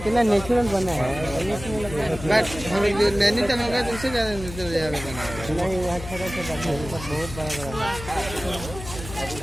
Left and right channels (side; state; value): left; noise; hum, 12 dB below the sound